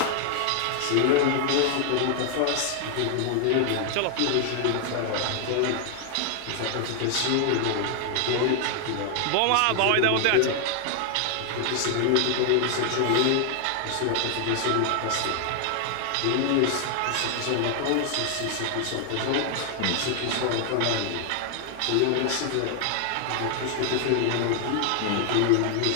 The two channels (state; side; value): different; both; correlation 0.00